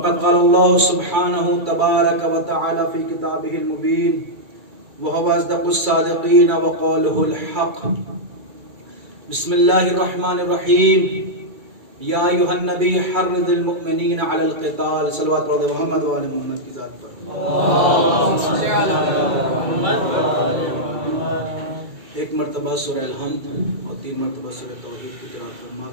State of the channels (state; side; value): late; left; 2.3 ms